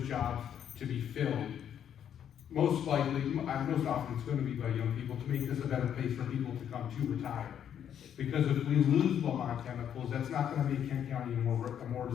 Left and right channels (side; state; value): right; quieter; 9.3 dB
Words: jobs to be filled. Most often it's going to be by young people to make this a better place for people to come to retire. Because if we lose Lamont Chemicals, that's not going to make Kent County a more